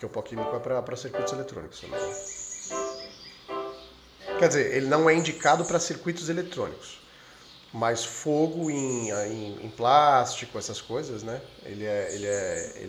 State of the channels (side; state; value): both; identical; correlation 1.00